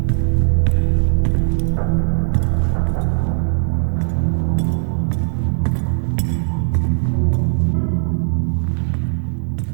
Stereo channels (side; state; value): left; silent; 67 dB below the other